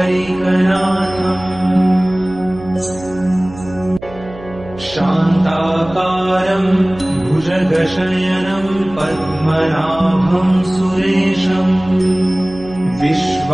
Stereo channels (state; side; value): noise; right; hum, 17 dB below the sound